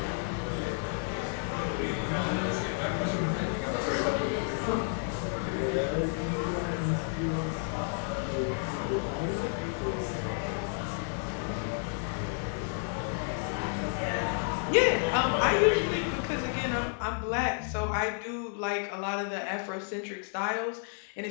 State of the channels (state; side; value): silent; right; 56 dB below the other